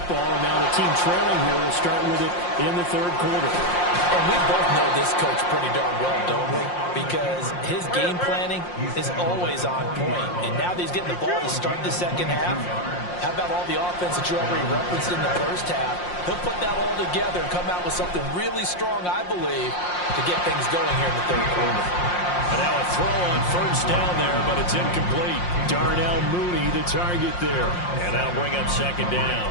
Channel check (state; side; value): late; right; 5.6 ms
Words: and now the team trailing here will start with it in the third quarter. And we both know this coach pretty darn well, don't we? Because his game planning is always on point. And now that he's getting the ball to start the second half, how about all the offense that you already referenced in the first half? He'll put that all together and come out with something really strong, I believe, to get things going here in the third quarter. And now a throw on first down there, but it's incomplete. Darnell Mooney, the target there. And that'll bring up second down.